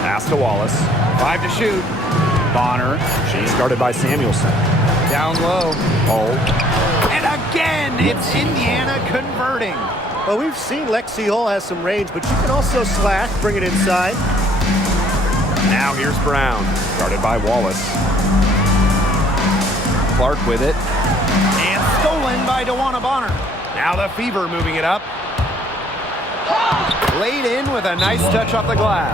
Pass to Wallace. 5 to shoot. Bonner. She's guarded by Samuelson. Down low. Hole. And again, it's Indiana converting. Well, we've seen Lexi Hull has some range, but she can also slash, bring it inside. Now here's Brown. Guarded by Wallace. Clark with it. And stolen by DeWanna Bonner. Now the Fever moving it up. Laid in with a nice touch off the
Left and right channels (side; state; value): both; normal; correlation 0.60